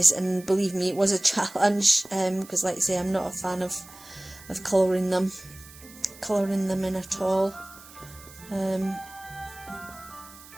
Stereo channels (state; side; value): noise; right; hiss, 20 dB below the sound